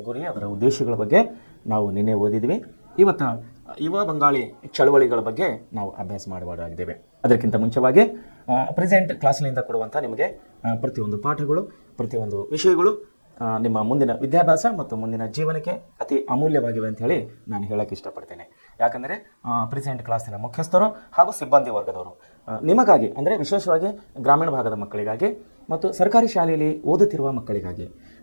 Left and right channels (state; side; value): inverted; both; correlation -1.00